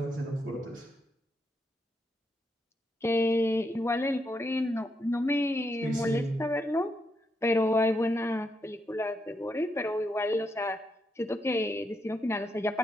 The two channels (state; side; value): normal; both; correlation 0.81